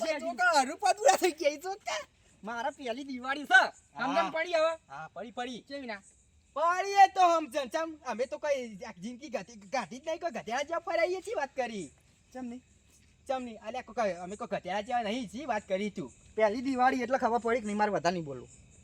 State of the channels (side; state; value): both; identical; correlation 1.00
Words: જો કહો રૂપા દુરા થઈ ગયા જો કે મારા પહેલી દિવાળી છે સમજણ પડી હવે. હા પડી કેવી ના પડીએ તો સમજણ ચમ અમે તો કઈ જિંદગી ગાધી જ નહીં કોઈ ગધેડા જેવા ફરાઈએ છીએ વાત કરી ચમ નહીં અલ્યા કોઈ અમે કોઈ ગધેડા જેવા નહીં છીએ વાત કરી તું પહેલી દિવાળી એટલે ખબર પડી કે નહીં મારે વધારે નહીં બોલવું.